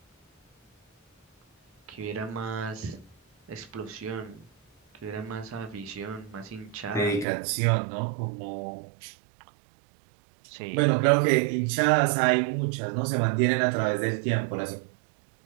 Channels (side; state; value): left; drops out; at 7.2 s